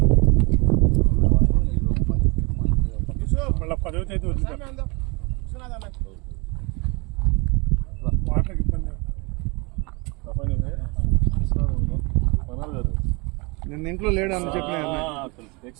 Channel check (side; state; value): left; quieter; 29.7 dB